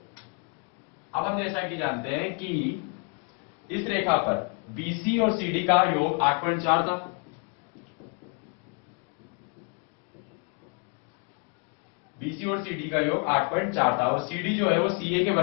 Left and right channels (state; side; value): quieter; right; 34.7 dB